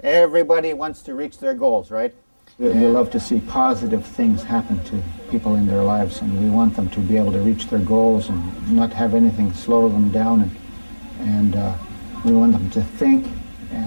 Everybody wants to reach their goals, right? We love to see positive things happen to people in their lives, and we want them to be able to reach their goals and not have anything slow them down, and we want them to think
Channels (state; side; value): inverted; both; correlation -1.00